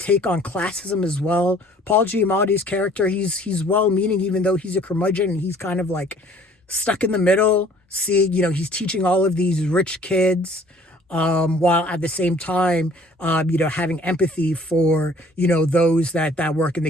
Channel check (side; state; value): both; normal; correlation 0.54